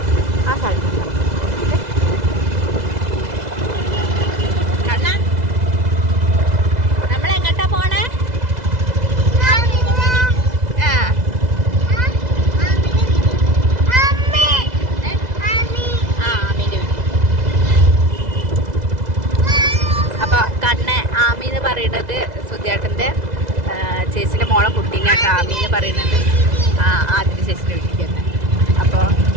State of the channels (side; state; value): left; late; 2.0 ms